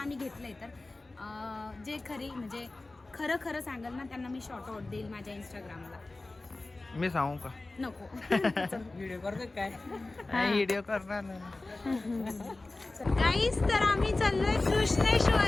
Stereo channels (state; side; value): quieter; right; 3.1 dB